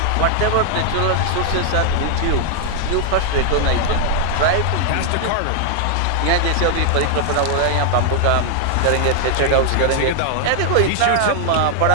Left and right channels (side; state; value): both; different; correlation 0.00